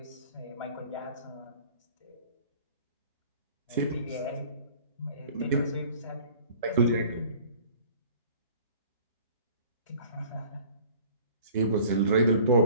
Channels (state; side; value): inverted; both; correlation -0.49